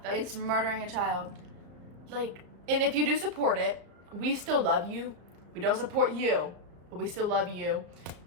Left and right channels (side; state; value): left; late; 35 ms